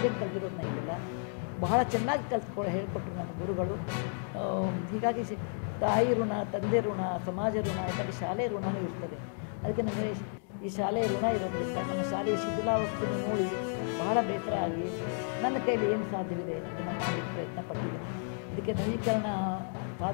ಕಲ್ತಿರೋದು ನನಗೆಲ್ಲ ಬಹಳ ಚೆನ್ನಾಗಿ ಹೇಳ್ಕೊಟ್ರು ನನ್ನ ಗುರುಗಳು. ಹೀಗಾಗಿ ತಾಯಿ ಋಣ, ತಂದೆ ಋಣ, ಸಮಾಜ ಋಣ, ಯಾಕಂದರೆ ಶಾಲೆ ಋಣವೂ ಇರ್ತದೆ. ಅದಕ್ಕೆ ನನಗೆ ಈ ಶಾಲೆಯ ಋಣ ಇರೋದ್ರಿಂದ ನಮ್ಮ ಶಾಲೆಯ ಶಿಥಿಲಾವಸ್ಥೆಯನ್ನು ನೋಡಿ ಬಹಳ ಬೇಸರ ಆಗಿ ನನ್ನ ಕೈಲಿ ಏನು ಸಾಧ್ಯವಿದೆ ಅದನ್ನು ಮಾಡಲಿಕ್ಕೆ ಪ್ರಯತ್ನ ಪಟ್ಟಿದ್ದೀನಿ. ಇದಕ್ಕೆ ನವೀಕರಣ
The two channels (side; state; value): right; silent; 56 dB below the other